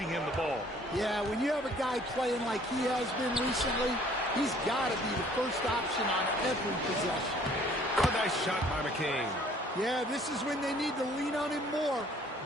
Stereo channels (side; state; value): both; normal; correlation 0.57